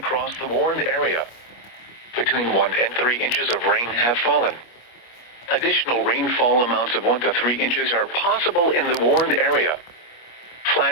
the warned area. Between 1 and 3 inches of rain have fallen. Additional rainfall amounts of 1 to 3 inches are possible in the warned area.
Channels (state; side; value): late; right; 25 ms